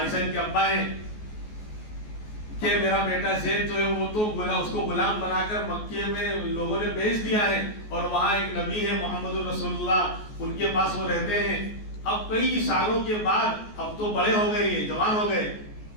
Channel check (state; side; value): late; right; 14 ms